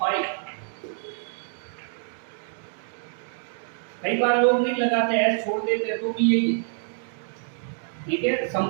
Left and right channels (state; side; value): silent; left; digital silence